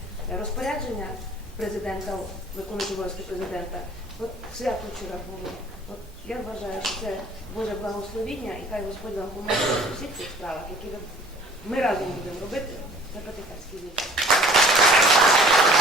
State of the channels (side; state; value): both; normal; correlation 0.52